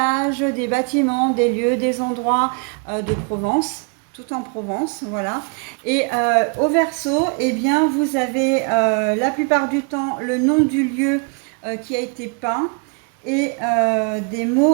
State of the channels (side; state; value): left; quieter; 36.8 dB